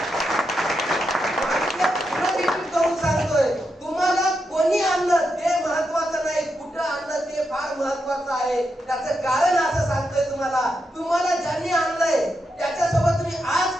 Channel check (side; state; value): both; normal; correlation 0.85